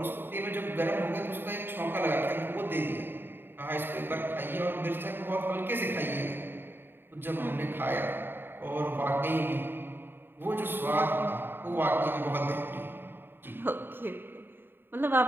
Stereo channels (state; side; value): late; left; 0.10 ms